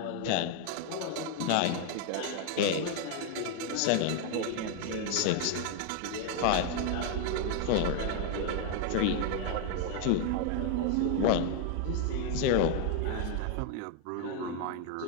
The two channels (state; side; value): different; both; correlation 0.00